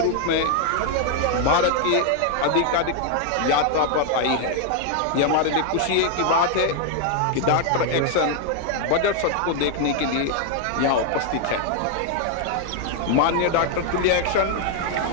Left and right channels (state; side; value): different; both; correlation 0.00